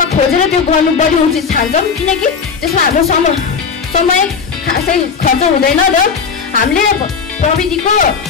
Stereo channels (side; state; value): right; quieter; 5.8 dB